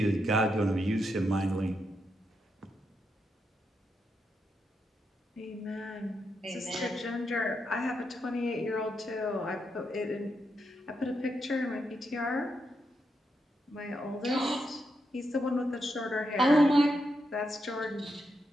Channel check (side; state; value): both; normal; correlation 0.83